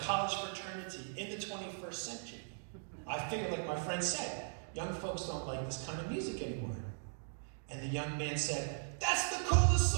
fraternity in the 21st century. I figured, like my friend said, young folks don't like this kind of music anymore. And the young man said, "That's the coolest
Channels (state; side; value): silent; left; digital silence